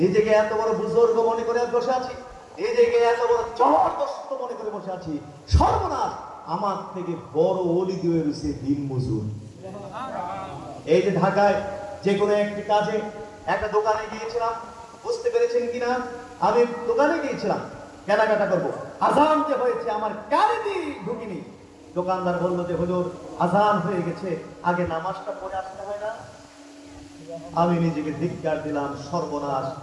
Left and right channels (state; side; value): identical; both; correlation 1.00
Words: নিজেকে এত বড় বুজুর্গ মনে করে বসে আছি, নিজেকে এত বড় জবরদস্ত মনে করে বসে আছি। সর্বনাশ, আমার থেকে বড় ওলি দিয়ে রয়েছে দিন মজুর। এই যে ঢাকায় যে কোনো একটি কাজে একটা দোকানে গিয়েছিলাম, বুঝতে পেরেছেন কিনা, আমি দোকানে গিয়েছিলাম কেনাকাটা করবো, আজান যে হয়েছে আমার কানে দিয়ে ঢুকিনি। দোকানদার বললো যে হুজুর আজান হয়ে গেছে, আগে নামাজটা পড়ে আসতে হয় না? আমি নিজেকে ধিক্কার দিলাম, সর্বনাশ।